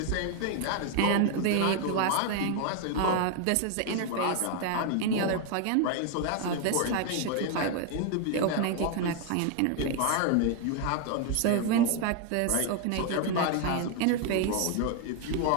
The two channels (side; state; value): both; different; correlation 0.00